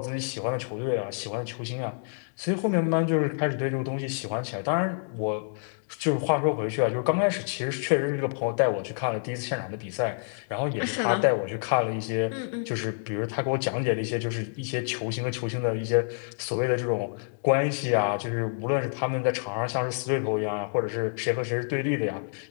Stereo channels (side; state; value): right; silent; digital silence